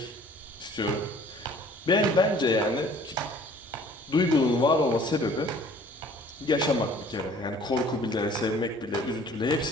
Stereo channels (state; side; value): normal; both; correlation 0.52